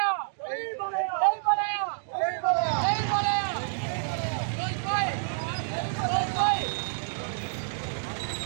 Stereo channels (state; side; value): silent; left; digital silence